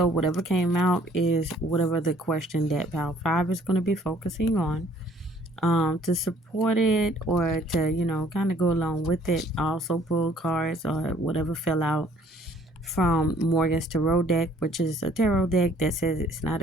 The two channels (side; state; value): both; normal; correlation 0.58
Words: whatever came out is whatever the question that pile 5 is going to be focusing on. To support it or to kind of go along with it, I also pull cards or whatever fell out from Morgan's tarot deck, which is a tarot deck that says it's not